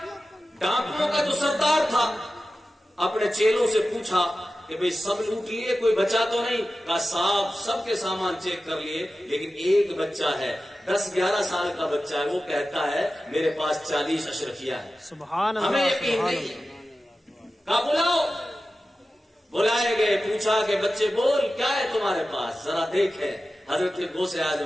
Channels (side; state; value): both; normal; correlation 0.94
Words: ڈاکوؤں کا جو سردار تھا اپنے چیلوں سے پوچھا کہ بھئی سب لوٹ لیے, کوئی بچا تو نہیں؟ کہا صاحب سب کے سامان چیک کر لیے, لیکن ایک بچہ ہے 10-11 سال کا بچہ ہے, وہ کہتا ہے میرے پاس 40 اشرفیاں ہیں. سبحان اللہ, ہمیں یقین نہیں ہے. کہا بلاؤ. بلائے گئے, پوچھا کہ بچے بول کیا ہے تمہارے پاس, ذرا دیکھیں. حضرت غوث